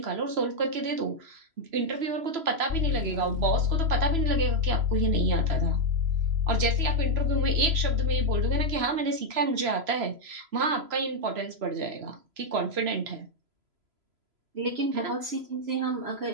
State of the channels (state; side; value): late; left; 3.0 ms